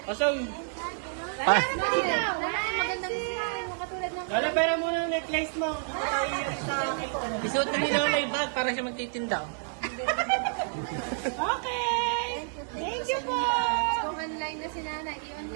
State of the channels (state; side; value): silent; left; 58 dB below the other